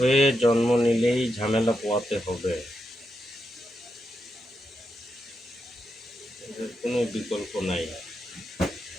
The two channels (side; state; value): both; normal; correlation 0.85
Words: জন্ম নিলেই ঝামেলা পোয়াতে হবে, এদের কোনো বিকল্প নাই।